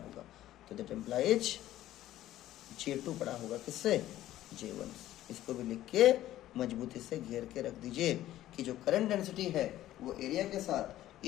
तो दैट इम्प्लाइज J2 बड़ा होगा किससे, J1। इसको भी लिख के मजबूती से घेर के रख दीजिए कि जो करंट डेंसिटी है वो एरिया के साथ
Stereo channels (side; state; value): right; quieter; 13.9 dB